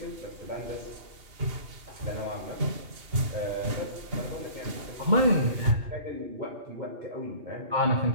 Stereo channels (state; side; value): late; left; 2.8 ms